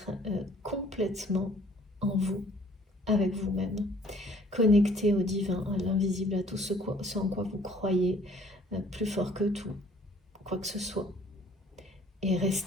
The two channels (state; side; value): normal; both; correlation 0.57